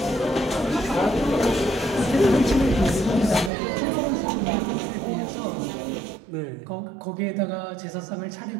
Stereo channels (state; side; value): drops out; left; at 3.5 s